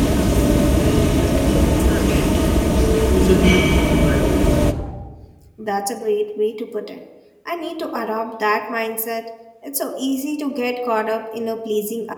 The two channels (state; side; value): identical; both; correlation 1.00